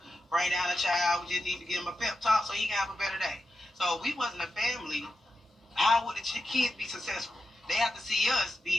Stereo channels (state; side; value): normal; both; correlation 0.89